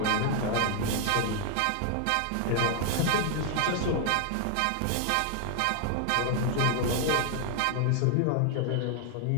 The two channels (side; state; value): both; different; correlation 0.00